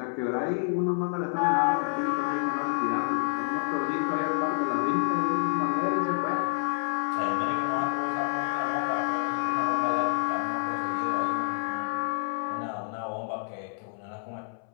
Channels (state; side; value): silent; right; 59 dB below the other